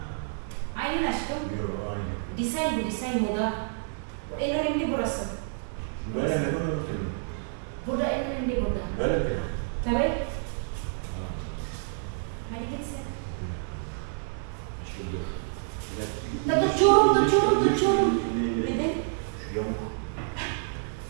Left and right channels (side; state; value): left; silent; 59 dB below the other